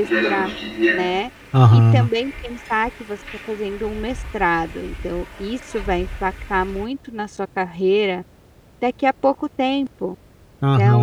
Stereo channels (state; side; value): identical; both; correlation 1.00